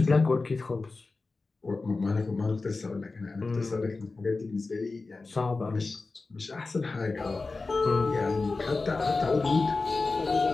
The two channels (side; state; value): right; quieter; 3.8 dB